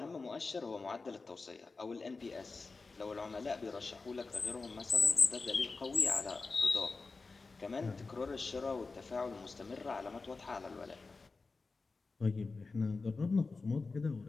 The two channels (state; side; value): quieter; right; 4.0 dB